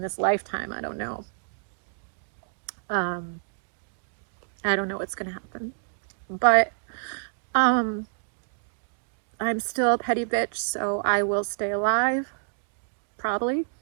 this lifetime. I don't know. Um, I don't know what's going to happen. But I'm still a petty bitch, so I will stay alive, probably,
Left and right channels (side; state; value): left; silent; digital silence